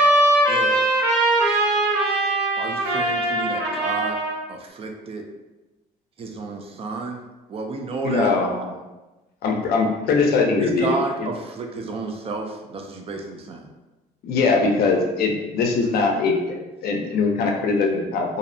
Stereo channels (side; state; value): both; normal; correlation 0.43